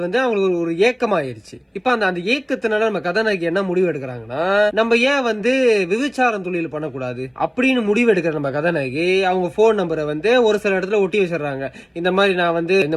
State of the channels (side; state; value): both; identical; correlation 1.00